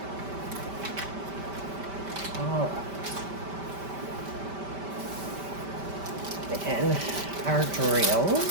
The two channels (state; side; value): late; left; 5.1 ms